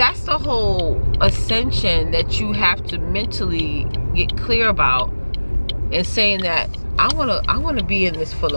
whole ascension that you have to mentally get clear about, and saying that I wanna be in this for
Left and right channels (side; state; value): both; inverted; correlation -1.00